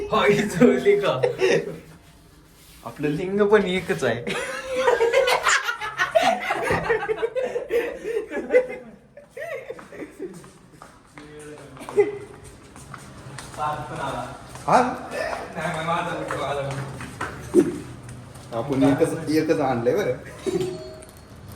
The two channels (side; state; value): both; identical; correlation 1.00